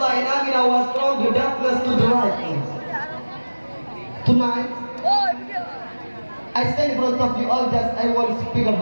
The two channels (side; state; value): both; inverted; correlation -1.00